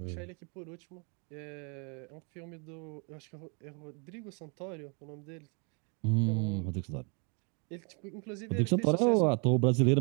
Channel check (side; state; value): left; quieter; 35.8 dB